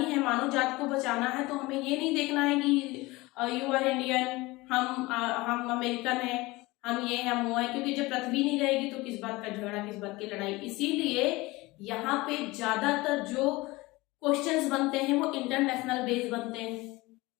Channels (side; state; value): right; quieter; 21.5 dB